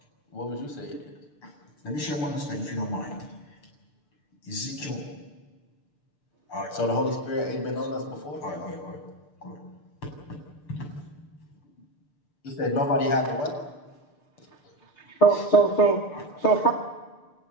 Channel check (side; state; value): right; late; 6.8 ms